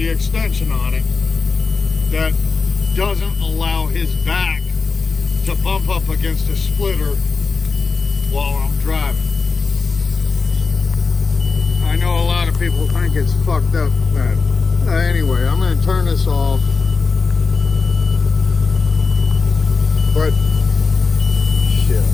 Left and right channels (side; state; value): right; quieter; 4.5 dB